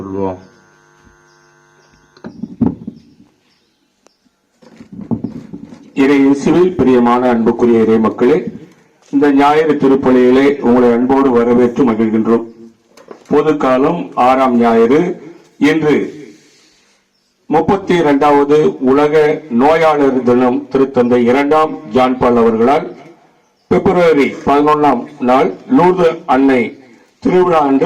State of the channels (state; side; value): identical; both; correlation 1.00